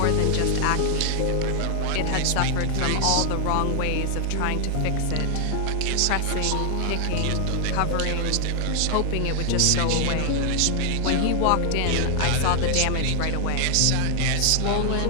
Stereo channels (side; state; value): both; different; correlation 0.00